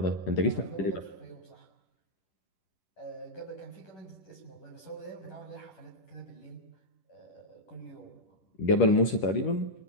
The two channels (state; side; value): late; right; 10 ms